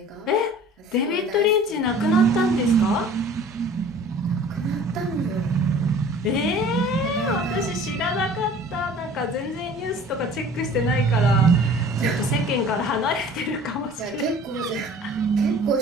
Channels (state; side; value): normal; both; correlation 0.47